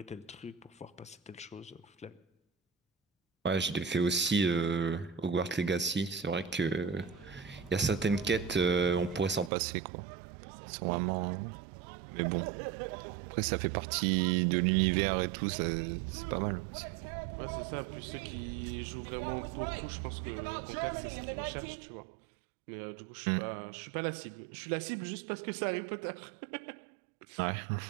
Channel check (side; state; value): left; drops out; at 9.5 s